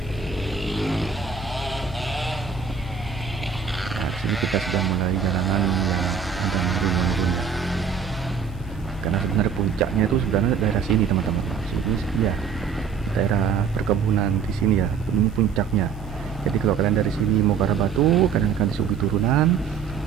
Nah di sini kita sudah mulai jalanan yang sudah menurun ya. Karena sebenarnya puncaknya itu sebenarnya daerah sini teman-teman. Sini ya daerah perkebunan di sini ya, ini puncaknya. Jadi kalau kalian dari sini mau ke arah Batu, kalian akan disuguhi turunan.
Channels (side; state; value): left; quieter; 6.3 dB